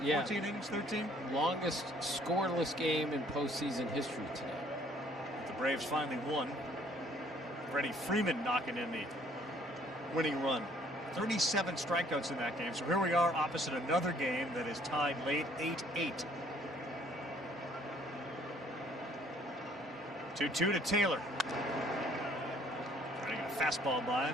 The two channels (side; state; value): both; normal; correlation 0.60